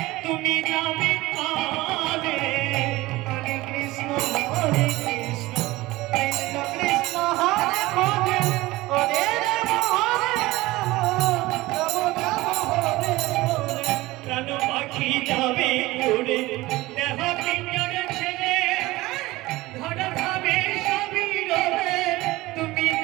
তুমি যাবে কালে। হরে কৃষ্ণ কৃষ্ণ কৃষ্ণ হরে হরে হরে রাম রাম রাম হরে হরে। প্রাণ পাখি যাবে গুনে দেখা পিঞ্জরে ছেড়ে ধরা ভাবে সবই রবে তুমি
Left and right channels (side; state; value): left; quieter; 19.2 dB